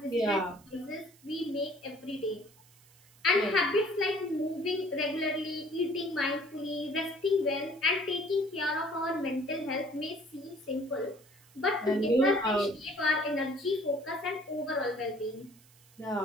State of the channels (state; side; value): noise; right; hiss, 27 dB below the sound